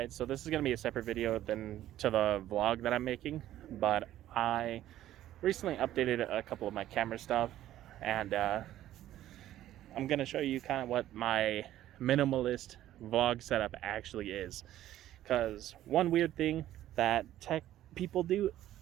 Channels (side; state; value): left; quieter; 13.2 dB